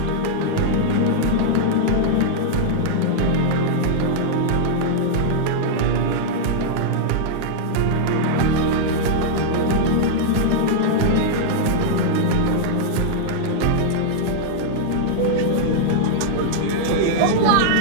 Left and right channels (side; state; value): both; different; correlation -0.01